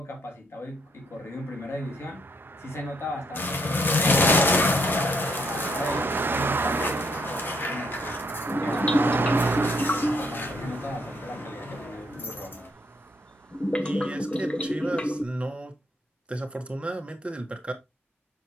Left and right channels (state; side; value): normal; both; correlation 0.72